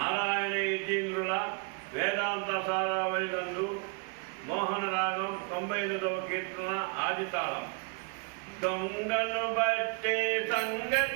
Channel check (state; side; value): quieter; left; 34.3 dB